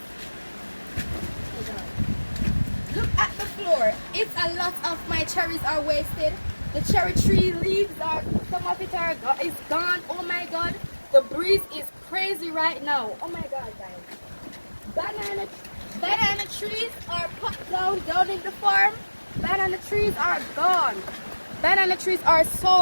Look at the floor. It's a lot of my cherries are wasted. The cherry tree leaves are, some of it is gone. Oh my god, the breeze is crazy right now. Oh my god, guys. Banana trees are put down in the farm. Banana trees are gone. Banana trees are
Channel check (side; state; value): both; inverted; correlation -1.00